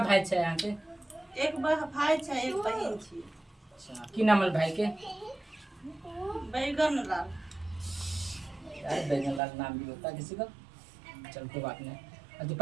छे यहाँ के? एक भाई छै एक बहिन छी। अच्छा की नाम है भाई के? बैगन लाल। यार बैगन लाल नाम भी होता है किसी का। चल कोई बात नहीं। अभी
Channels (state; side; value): drops out; left; at 9.4 s